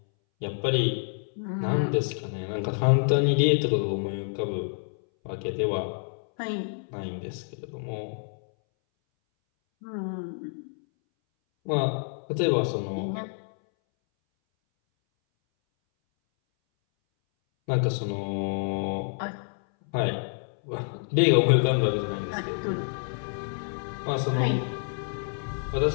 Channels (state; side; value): silent; right; 59 dB below the other